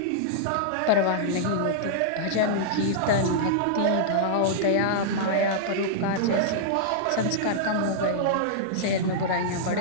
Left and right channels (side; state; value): both; different; correlation -0.02